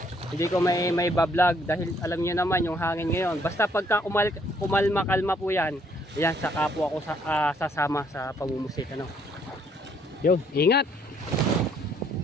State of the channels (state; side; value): normal; both; correlation 0.67